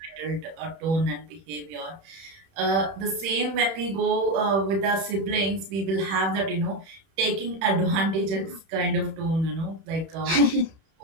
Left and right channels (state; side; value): late; left; 31 ms